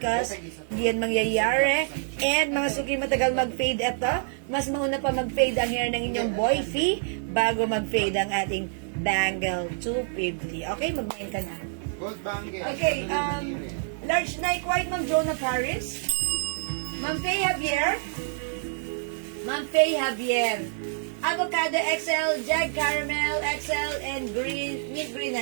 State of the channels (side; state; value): left; silent; 60 dB below the other